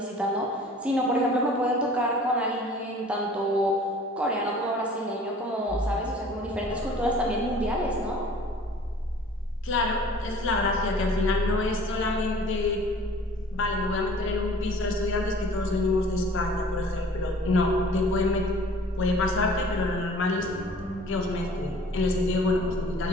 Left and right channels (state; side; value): normal; both; correlation 0.50